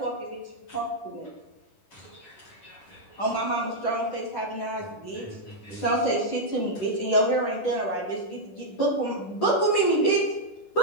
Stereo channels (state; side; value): late; right; 10 ms